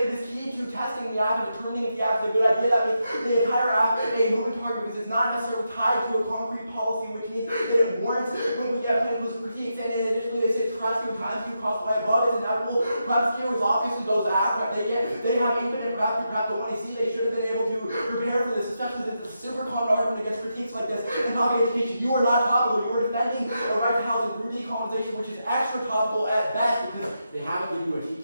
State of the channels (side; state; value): both; inverted; correlation -0.85